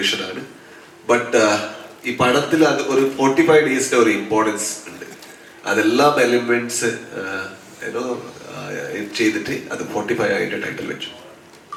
ആണ്. ബട്ട് ഈ പടത്തിൽ അത് ഒരു 45 ഡേയ്സിന്റെ ഒരു ഇമ്പോർട്ടൻസ് ഉണ്ട്. അതെല്ലാം എലിമെന്റ്സ് ചെയ്തിട്ട് അത് 45 ആയിട്ട് ടൈറ്റിൽ വെച്ചു.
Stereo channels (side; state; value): both; identical; correlation 1.00